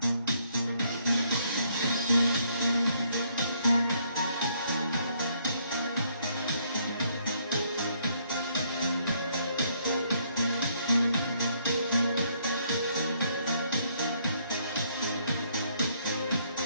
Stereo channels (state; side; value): inverted; both; correlation -0.69